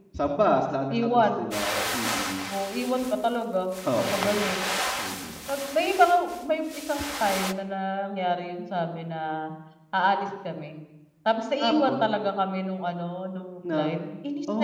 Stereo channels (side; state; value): both; identical; correlation 1.00